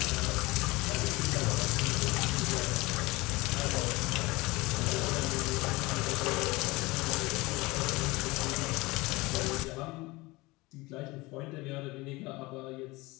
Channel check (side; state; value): right; quieter; 22.3 dB